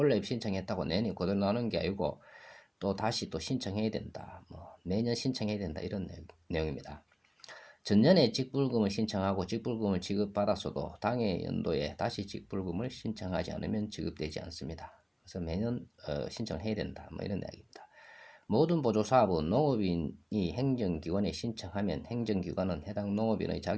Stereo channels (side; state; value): both; identical; correlation 1.00